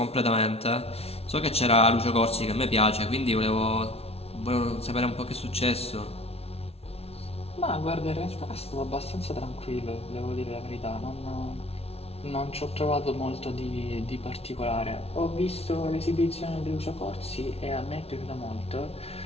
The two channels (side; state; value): right; late; 0.30 ms